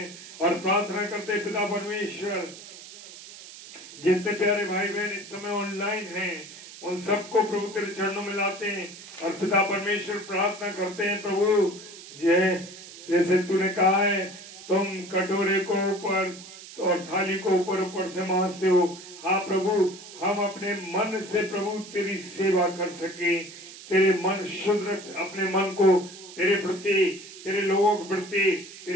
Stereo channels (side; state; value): right; noise; hiss, 16 dB below the sound